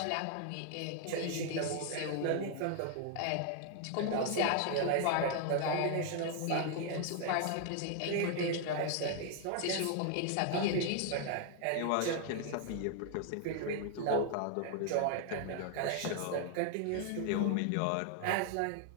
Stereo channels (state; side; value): different; both; correlation 0.00